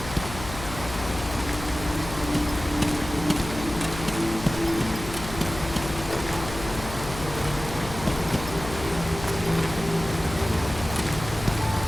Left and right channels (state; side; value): noise; left; hum, 10 dB below the sound